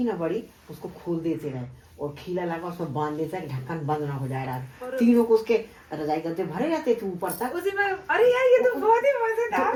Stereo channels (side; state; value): both; identical; correlation 1.00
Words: ना बड़ी, उसको खोल देते रहे और खीला लगा उसमें बांध देता है, ढक्कन बंद ना हो जाए रात। तीनों को उसके रजाई गद्दे भरे रहते थे ऊपर तक उसी में। अरे यार, ये तो बहुत ही मजेदार